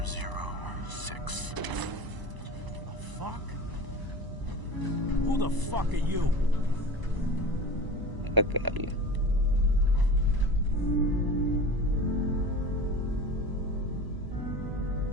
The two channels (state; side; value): late; left; 1.0 ms